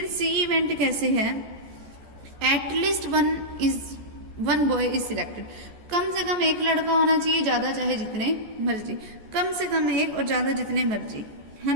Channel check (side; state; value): left; late; 14 ms